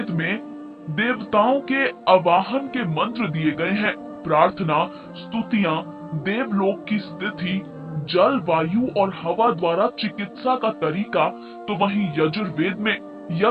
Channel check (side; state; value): both; identical; correlation 1.00